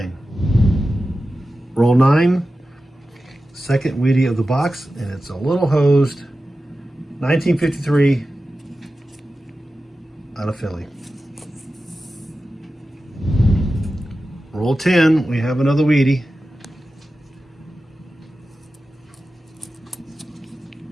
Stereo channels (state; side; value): normal; both; correlation 0.93